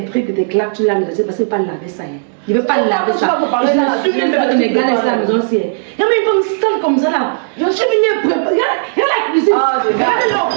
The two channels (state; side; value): silent; left; digital silence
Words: trucs, tes claques, tu laves les assiettes parce que pas laver ça. Je ne veux pas laver ça. Je suis même pas de gars à la maison. Il y a même une femme sale comme ça là. Je suis venue préparer. Regarde la cuisine. Regardez l'eau.